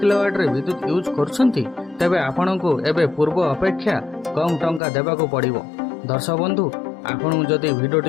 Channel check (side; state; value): right; drops out; at 4.8 s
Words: रे विद्युत यूज करछंती तेबे आपणको एबे पूर्व अपेक्षा कम टंका देबाको पड़िबो। दर्शक बंधु आपण जदि